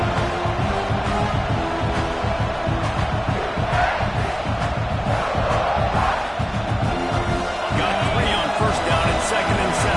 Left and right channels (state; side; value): identical; both; correlation 1.00